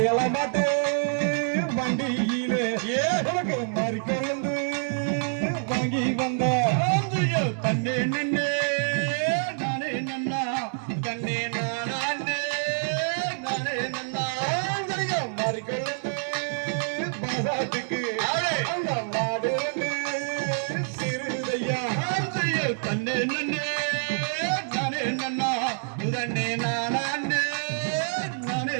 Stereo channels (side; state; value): left; silent; 60 dB below the other